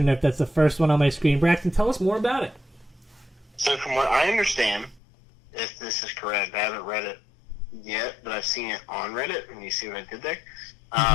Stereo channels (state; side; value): drops out; right; at 5.0 s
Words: nerf. That's the first one on my screen. Braxton, tell us more about it. So from what I understand, if this is correct, I haven't read it yet, but I've seen it on Reddit, and you see what I did there?